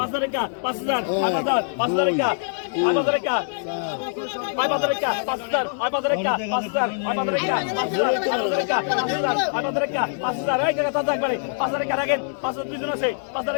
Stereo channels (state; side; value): silent; right; digital silence